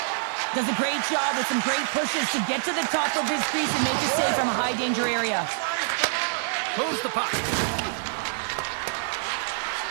Does a great job with some great pushes to get to the top of his crease and make a save from a high-danger area. Moves the puck.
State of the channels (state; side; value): silent; left; digital silence